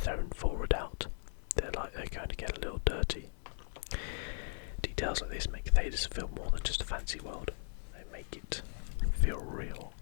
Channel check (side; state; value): right; silent; 53 dB below the other